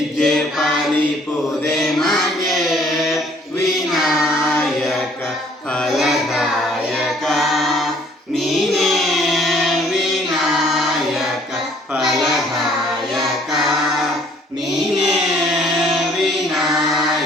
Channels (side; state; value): both; normal; correlation 0.60